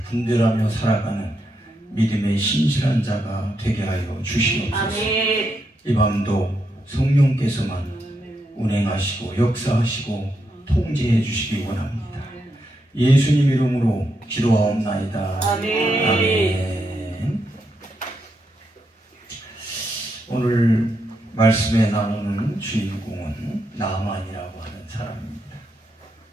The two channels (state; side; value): normal; both; correlation 0.81